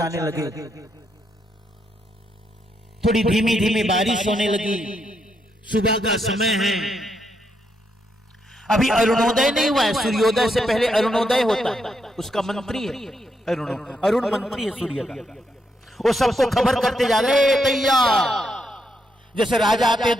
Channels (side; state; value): both; normal; correlation 0.79